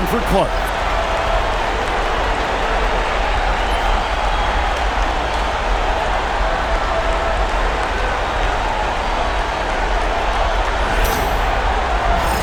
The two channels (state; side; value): identical; both; correlation 1.00